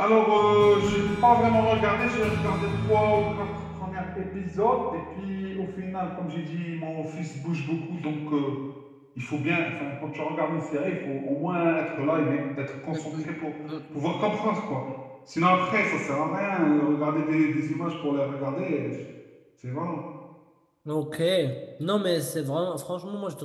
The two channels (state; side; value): identical; both; correlation 1.00